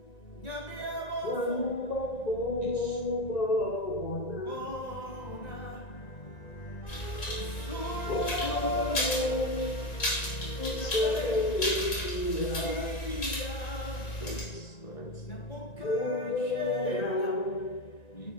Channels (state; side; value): late; right; 1.9 ms